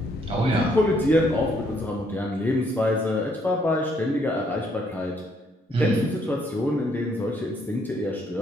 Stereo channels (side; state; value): both; normal; correlation 0.70